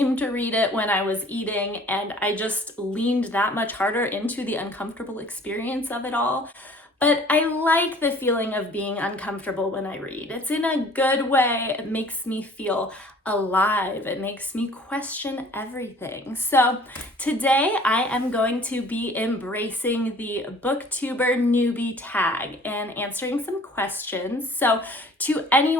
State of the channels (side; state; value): both; normal; correlation 0.51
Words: to read it when I was eating, and I just leaned that much harder into the uncomfortable experience of it all. But I like the feeling of being uncomfortable when I read. It's in a good way. It makes me feel alive. It makes me question everything. So today I am going to be embracing the booktuber newbie tag and answering some questions. So to